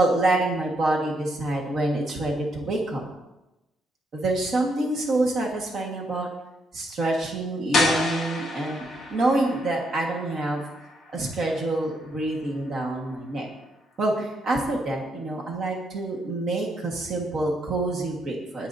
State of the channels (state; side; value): normal; both; correlation 0.76